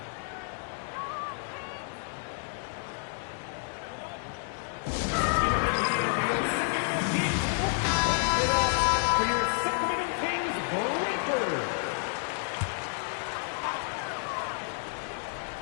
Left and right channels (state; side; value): silent; right; 58 dB below the other